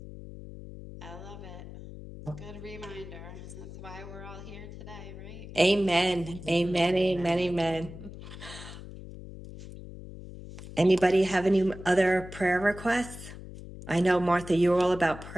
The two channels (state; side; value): noise; left; hum, 13 dB below the sound